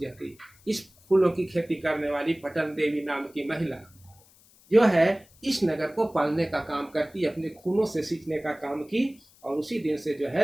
इस फूलों की खेती करने वाली पटन देवी नाम की महिला जो है इस नगर को पालने का काम करती, अपने खूनों से सींचने का काम की, और उसी दिन से जो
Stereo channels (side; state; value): left; noise; hiss, 28 dB below the sound